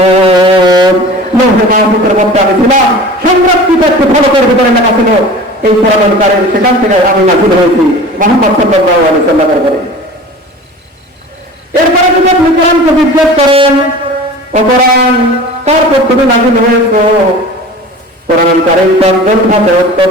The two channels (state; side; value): normal; both; correlation 0.39